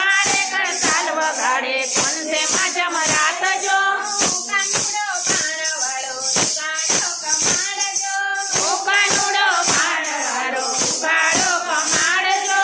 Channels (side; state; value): both; identical; correlation 1.00